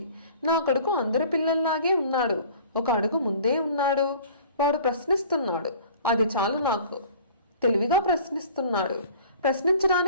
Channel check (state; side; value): inverted; both; correlation -0.48